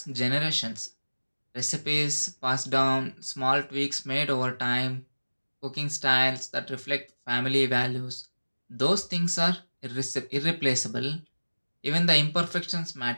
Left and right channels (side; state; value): both; inverted; correlation -1.00